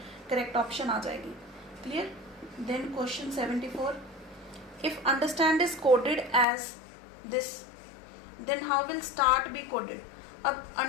करेक्ट ऑप्शन आ जाएगी। Clear. Then question 74, if understand is coded as this then how will start be coded. अब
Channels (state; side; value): drops out; right; at 6.5 s